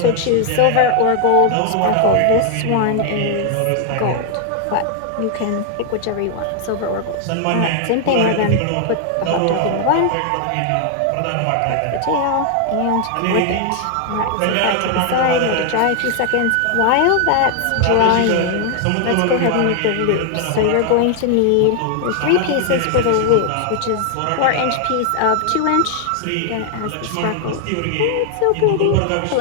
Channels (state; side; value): different; both; correlation 0.00